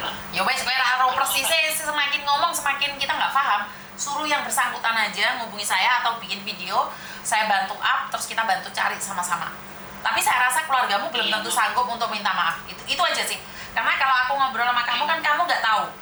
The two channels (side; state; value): both; identical; correlation 1.00